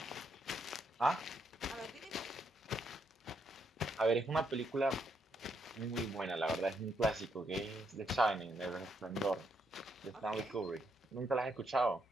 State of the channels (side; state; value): both; normal; correlation 0.77